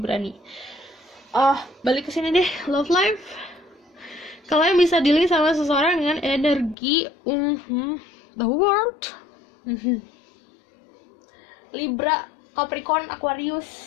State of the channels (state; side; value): drops out; right; at 6.8 s